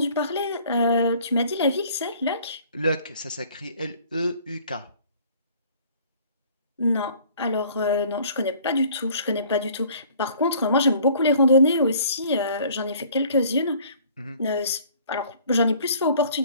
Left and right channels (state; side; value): inverted; both; correlation -0.54